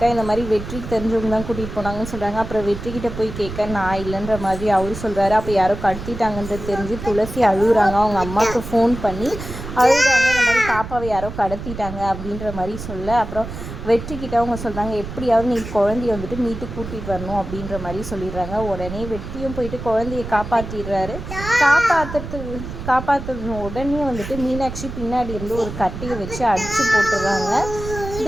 இந்த மாதிரி வெற்றிக்கு தெரிஞ்சவங்க தான் கூட்டிகிட்டு போனாங்கன்னு சொல்கிறாங்க. அப்புறம் வெற்றிக்கிட்ட போய் கேட்க நான் இல்லைன்ற மாதிரி அவரு சொல்கிறாரு. அப்போ யாரோ கடத்திட்டாங்கன்றது தெரிஞ்சு துளசி அழுகுறாங்க. அவங்க அம்மாவுக்கு ஃபோன் பண்ணி அழுகுறாங்க. இந்த மாதிரி பாப்பாவை யாரோ கடத்திட்டாங்க அப்படின்ற மாதிரி சொல்ல, அப்புறம் வெற்றிக்கிட்ட அவங்க சொல்கிறாங்க எப்படியாவது நீ குழந்தைய வந்துட்டு மீட்டு கூட்டிகிட்டு வரணும் அப்படின்ற மாதிரி சொல்லிடுறாங்க. உடனே வெற்றியும் போயிட்டு குழந்தைய காப்பாற்றிடுறாரு. காப்பாற்றுன உடனே வந்துட்டு மீனாட்சி பின்னாடி இருந்து ஒரு கட்டையை வச்சு அடித்து போட்டுடுறாங்க.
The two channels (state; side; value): noise; right; rumble, 9 dB below the sound